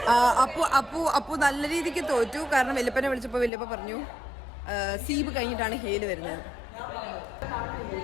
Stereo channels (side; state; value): right; drops out; at 3.5 s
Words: അപ്പു നല്ല രീതിക്ക് തോറ്റു. കാരണം വല്യപ്പനെ വിളിച്ചപ്പോ വല്യപ്പ പറഞ്ഞു സീബ് കഴിഞ്ഞിട്ടാണ് ഹേല് വരുന്നത്.